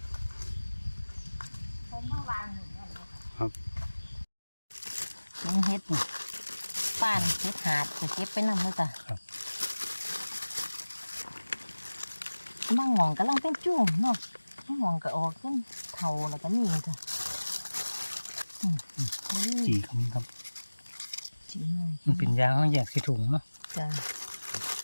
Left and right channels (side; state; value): both; inverted; correlation -1.00